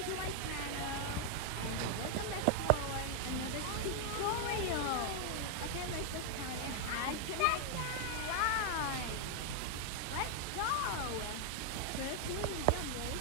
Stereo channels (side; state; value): both; different; correlation 0.00